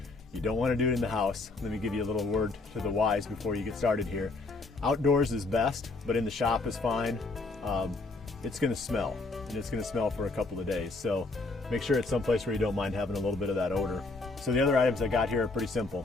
You don't want to do it in the house. Let me give you a little word to the wise before you get started here. Outdoors is best, but in the shop is fine. It's going to smell, and it's going to smell for a couple of days. So make sure it's someplace where you don't mind having a little bit of that odor. So the other items I got here are pretty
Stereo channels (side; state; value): right; quieter; 3.4 dB